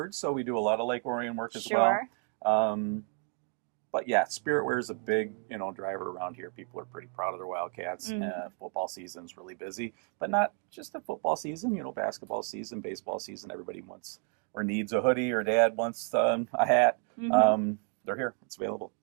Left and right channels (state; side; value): quieter; left; 38.6 dB